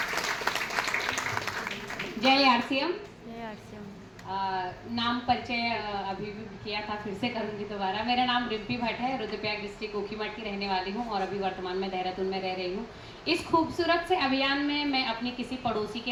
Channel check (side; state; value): both; identical; correlation 1.00